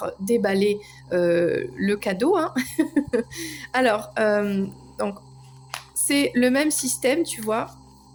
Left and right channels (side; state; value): both; identical; correlation 1.00